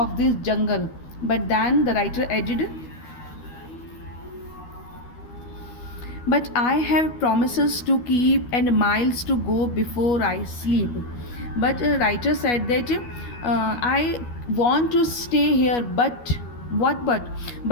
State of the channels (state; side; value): late; right; 12 ms